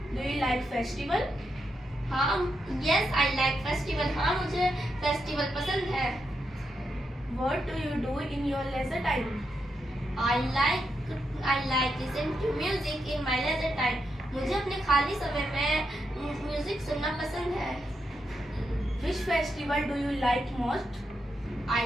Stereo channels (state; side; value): normal; both; correlation 0.84